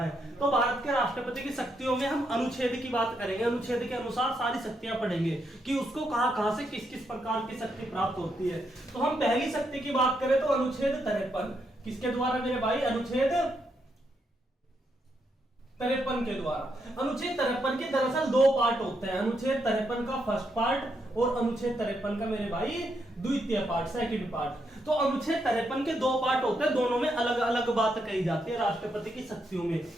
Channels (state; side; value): normal; both; correlation 0.79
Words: तो भारत के राष्ट्रपति की शक्तियों में हम अनुच्छेद की बात करेंगे। अनुच्छेद के अनुसार सारी शक्तियां पढ़ेंगे कि उसको कहां से किस किस प्रकार की शक्ति प्राप्त होती है। तो हम पहली शक्ति की बात करें तो अनुच्छेद 53 किसके द्वारा मेरे भाई? अनुच्छेद 53 के द्वारा। अनुच्छेद 53 के दरअसल दो पार्ट होते हैं। अनुच्छेद 53 का फर्स्ट पार्ट और अनुच्छेद 53 का मेरे भाई द्वितीय पार्ट, सेकंड पार्ट। तो अनुच्छेद 53 के दो पार्ट होते हैं, दोनों में अलग अलग बात कही जाती है राष्ट्रपति की शक्तियों में।